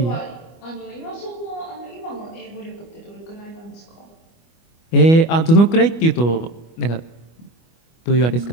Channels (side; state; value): right; late; 25 ms